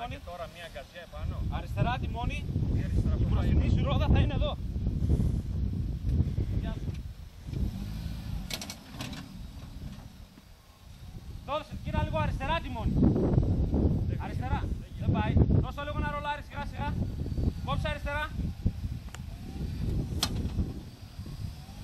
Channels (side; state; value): both; identical; correlation 1.00